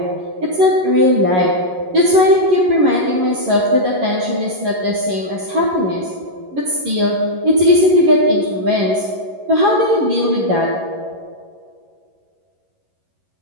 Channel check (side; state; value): left; late; 11 ms